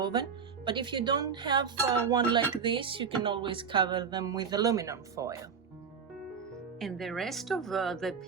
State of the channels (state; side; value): quieter; left; 6.4 dB